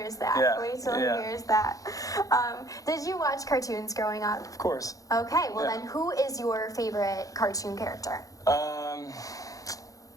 that. Yeah, Wait till yeah. he hears that. Did you watch cartoons growing up? Of course. Okay, well Yeah. then, who is your favorite cartoon character?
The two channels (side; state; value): right; late; 0.17 ms